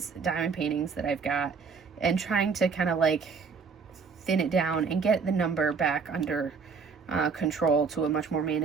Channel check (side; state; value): left; quieter; 5.3 dB